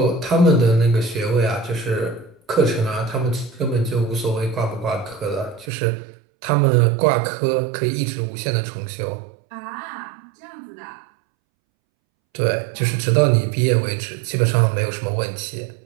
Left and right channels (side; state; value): left; drops out; at 5.7 s